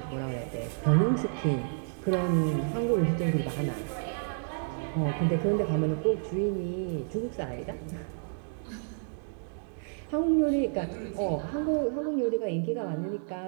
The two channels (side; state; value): left; silent; digital silence